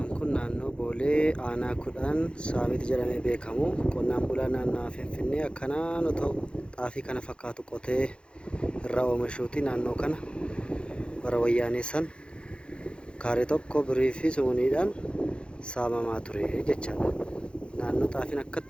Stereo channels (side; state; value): right; late; 0.056 ms